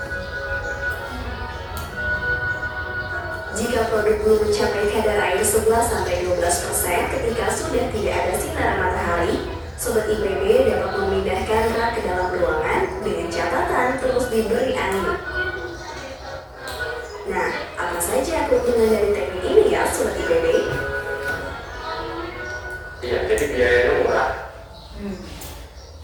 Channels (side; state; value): both; identical; correlation 1.00